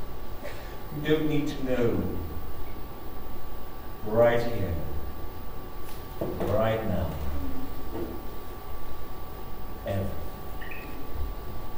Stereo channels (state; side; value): identical; both; correlation 1.00